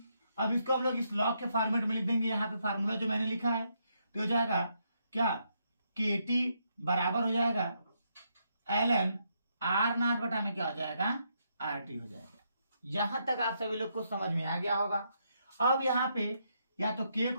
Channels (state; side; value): inverted; both; correlation -0.77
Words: अब इसको हम लोग इस लॉग के फॉर्मेट में लिख देंगे। यहाँ पे फार्मूला जो मैंने लिखा है तो हो जाएगा क्या, के टी बराबर हो जाएगा ln आर नॉट बटा में क्या हो जाएगा, आर टी हो जाएगा। यहां तक आप सभी लोग को समझ में आ गया होगा। अब यहाँ पे या तो k